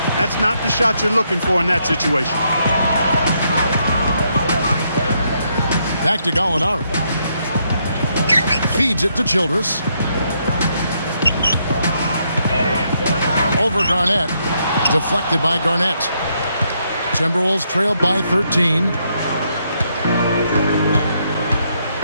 That's not the shot you're looking for in that situation. Back to Gallinari. Feeds it to Childress. Over Garnett. Deflected by Garnett. Timberwolves trail by 13.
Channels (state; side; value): inverted; both; correlation -0.76